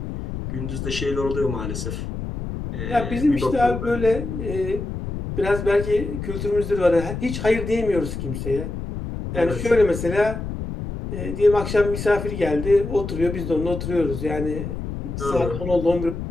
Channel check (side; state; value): left; noise; rumble, 6 dB below the sound